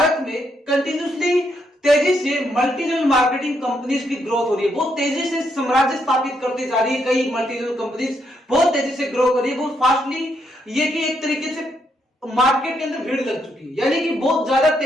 में कंटिन्यूसली तेजी से मल्टी लेवल मार्केटिंग कंपनीज की ग्रोथ हो रही है, बहुत तेजी से साम्राज्य स्थापित करती जा रही है। कई मल्टी लेवल कंपनीज बहुत तेजी से ग्रो कर रही है, बहुत फास्टली। ये कि एक तरीके से मार्केट के अंदर भीड़ लग चुकी है, यानी कि बहुत ज्यादा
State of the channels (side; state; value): both; normal; correlation 0.77